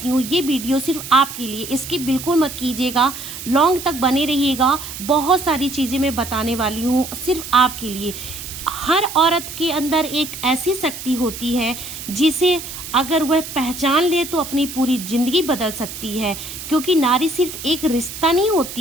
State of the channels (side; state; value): right; noise; hiss, 10 dB below the sound